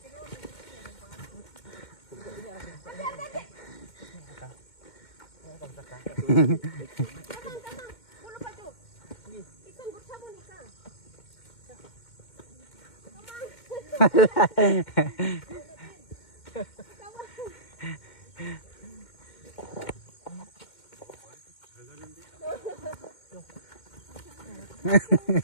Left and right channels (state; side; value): late; right; 2.1 ms